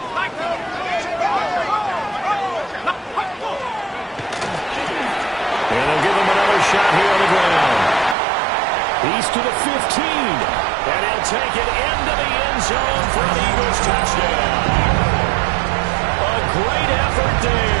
Shot here on the ground. He's to the 15. And he'll take it into the end zone for an Eagles touchdown. A great effort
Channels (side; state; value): left; drops out; at 8.2 s